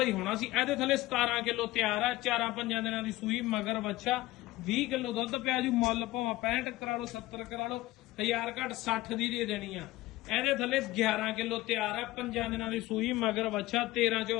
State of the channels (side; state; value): right; quieter; 18.1 dB